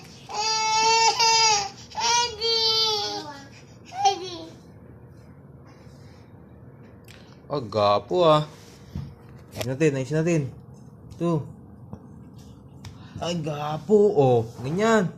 Oh, gapo ah. Ayos natin. Ito. Ay, gapo. Oh, ganyan.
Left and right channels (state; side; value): identical; both; correlation 1.00